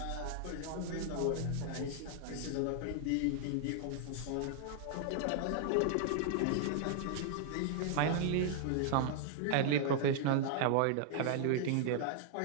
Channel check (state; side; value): different; both; correlation -0.01